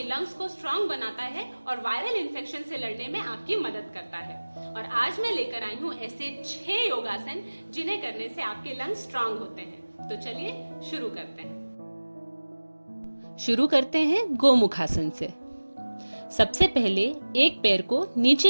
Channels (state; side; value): inverted; both; correlation -1.00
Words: लंग्स को स्ट्रांग बनाता है और वायरल इन्फेक्शन से लड़ने में आपकी मदद करता है। और आज मैं लेकर आई हूँ ऐसे 6 योगासन जिन्हें करने से आपके लंग्स स्ट्रांग होते हैं। तो चलिए शुरू करते हैं गोमुखासन से। सबसे पहले एक पैर को